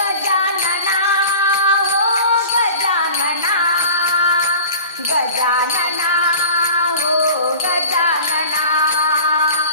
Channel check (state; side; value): inverted; both; correlation -0.39